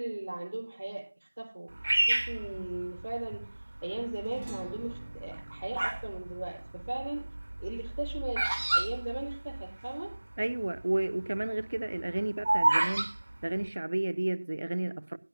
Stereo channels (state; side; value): inverted; both; correlation -1.00